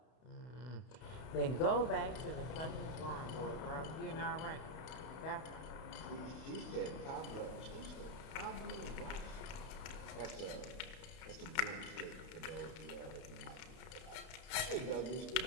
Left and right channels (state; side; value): late; right; 32 ms